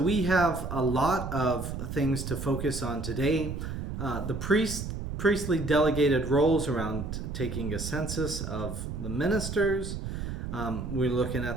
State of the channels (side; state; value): right; noise; rumble, 5 dB below the sound